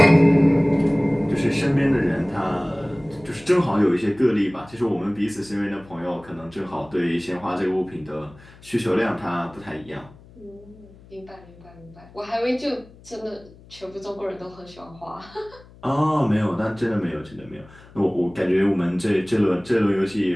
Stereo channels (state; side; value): noise; left; hum, 23 dB below the sound